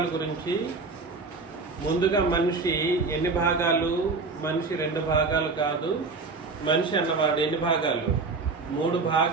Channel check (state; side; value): quieter; left; 4.1 dB